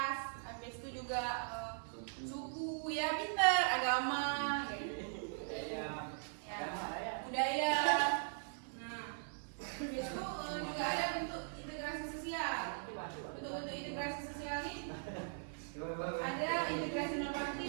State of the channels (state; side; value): silent; left; digital silence